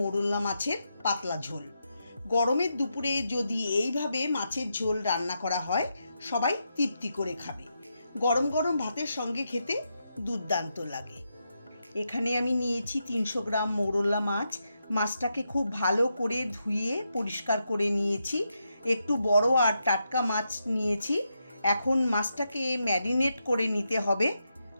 মাছের পাতলা ঝোল। গরমের দুপুরে যদি এইভাবে মাছের ঝোল রান্না করা হয়, সবাই তৃপ্তি করে খাবে। গরম গরম ভাতের সঙ্গে খেতে দুর্দান্ত লাগে। এখানে আমি নিয়েছি 300 গ্রাম মৌরলা মাছ। মাছটাকে খুব ভালো করে ধুয়ে পরিষ্কার করে নিয়েছি। একটু বড় আর টাটকা মাছ নিয়েছি। এখন মাছটাকে ম্যারিনেট করে নিতে হবে।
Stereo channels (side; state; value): both; inverted; correlation -0.84